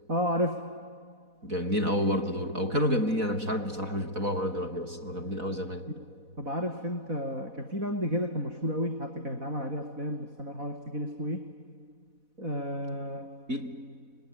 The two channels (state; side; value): late; left; 4.1 ms